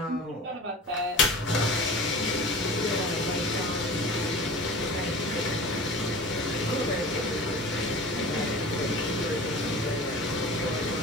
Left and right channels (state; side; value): normal; both; correlation 0.38